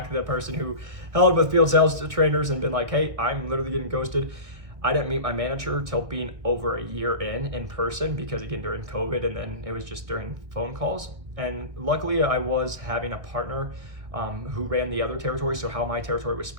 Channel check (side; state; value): left; late; 1.5 ms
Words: the person who held with field sales trainers and been like, hey, I'm literally getting ghosted. I didn't meet my manager till being over a year in person, because again, during COVID, and then it was just during phone calls. And luckily I was having a partner who ran the other territory. So how my territory was